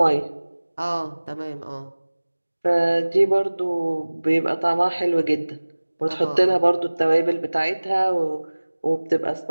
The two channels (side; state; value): both; inverted; correlation -1.00